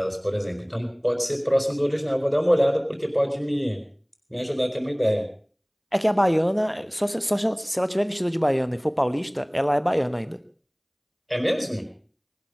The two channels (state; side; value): identical; both; correlation 1.00